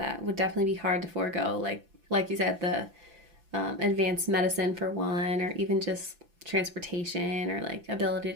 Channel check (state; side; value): late; left; 5.9 ms